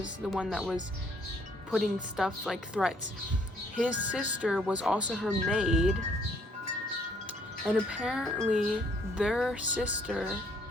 the one that was putting stuff like threats. His sister was also her maid, and apparently their sister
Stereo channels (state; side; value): normal; both; correlation 0.65